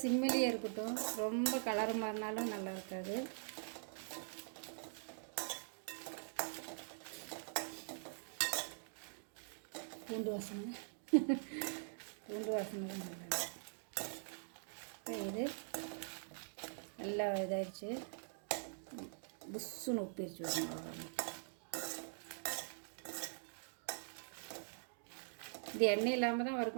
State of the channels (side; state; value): left; silent; digital silence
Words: சிம்மிலேயே இருக்கட்டும். ரொம்ப கலர் மாறினாலும் நல்லா இருக்காது. பூண்டு வாசனை தான் நல்லா. இப்போ இது நல்லா இதாகிடுச்சு. புஷ்ஷுன்னு உப்பிரிச்சு விடணும். இது எண்ணெய் இல்லாமல் தான்